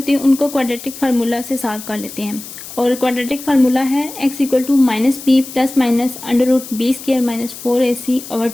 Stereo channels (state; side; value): noise; left; hiss, 13 dB below the sound